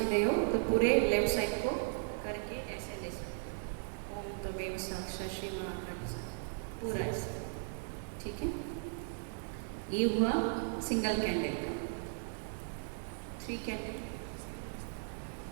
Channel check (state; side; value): silent; left; digital silence